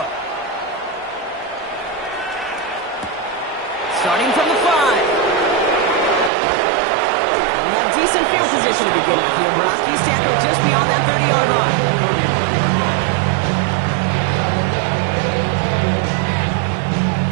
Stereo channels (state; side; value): drops out; left; at 6.3 s